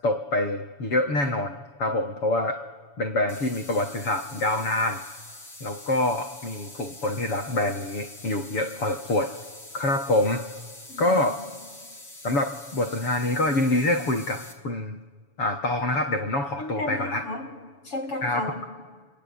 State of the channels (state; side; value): late; right; 7.1 ms